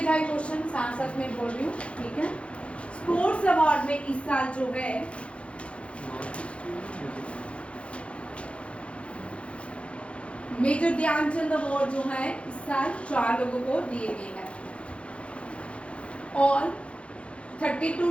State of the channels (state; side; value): late; right; 0.061 ms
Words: क्वेश्चन, साथ साथ में बोल रही हूँ, ठीक है। स्पोर्ट्स अवार्ड में इस साल जो है मेजर ध्यानचंद अवार्ड जो है इस साल 4 लोगों को दिए गए हैं, और 32